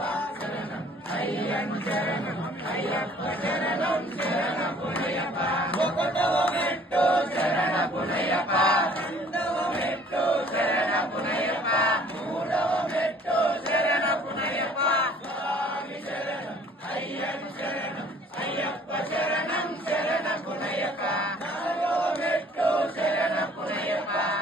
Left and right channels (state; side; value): normal; both; correlation 0.54